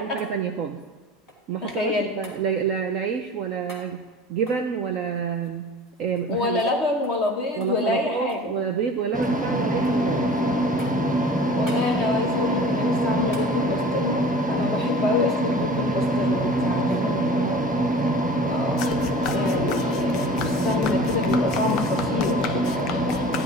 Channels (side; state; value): both; normal; correlation 0.41